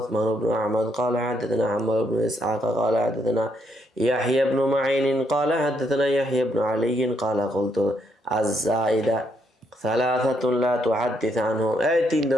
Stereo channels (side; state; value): both; normal; correlation 0.74